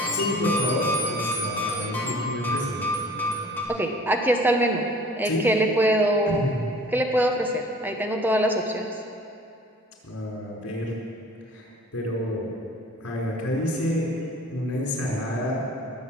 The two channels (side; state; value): both; normal; correlation 0.49